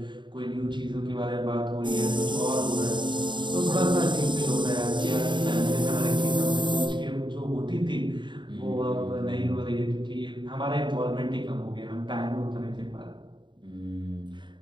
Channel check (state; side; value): late; left; 0.23 ms